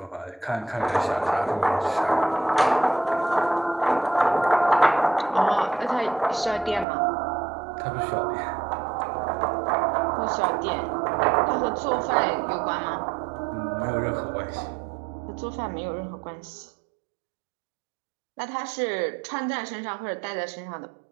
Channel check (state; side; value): drops out; left; at 6.9 s